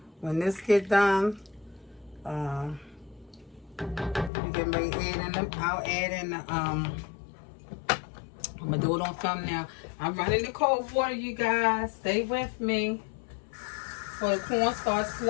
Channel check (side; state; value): right; drops out; at 4.3 s